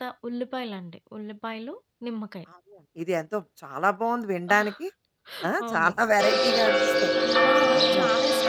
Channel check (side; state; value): both; identical; correlation 1.00